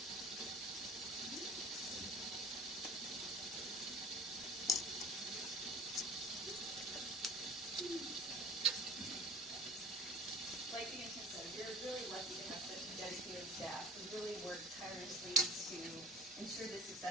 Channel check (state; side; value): normal; both; correlation 0.44